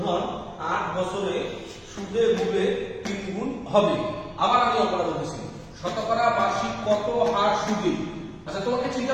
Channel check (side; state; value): both; identical; correlation 1.00